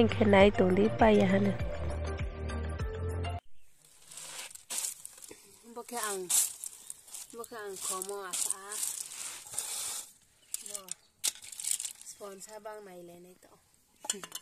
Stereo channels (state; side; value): identical; both; correlation 1.00